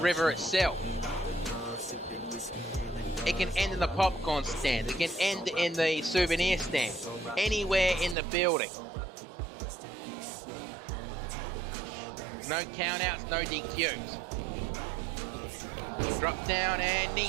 itself. It can end in the popcorn stand, it can end in the souvenir stand, anywhere in the building. No countouts, no DQs. Drop down and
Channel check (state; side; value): drops out; left; at 8.2 s